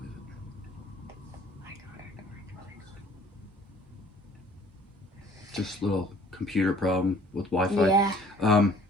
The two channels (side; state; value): both; normal; correlation 0.54